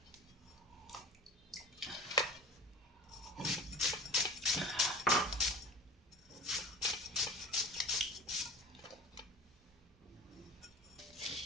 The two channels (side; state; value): both; normal; correlation 0.37